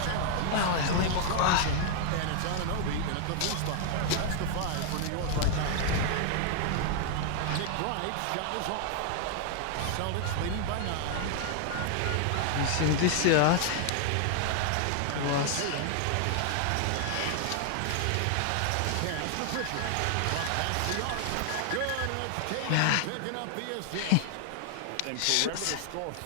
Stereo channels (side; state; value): both; different; correlation 0.00